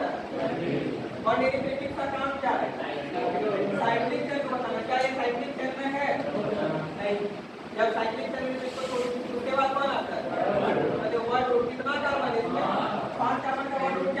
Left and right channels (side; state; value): both; identical; correlation 1.00